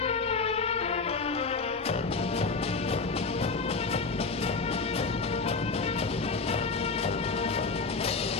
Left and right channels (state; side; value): quieter; right; 4.3 dB